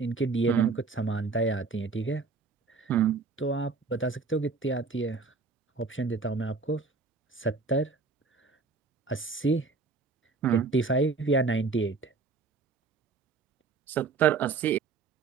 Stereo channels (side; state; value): left; quieter; 4.4 dB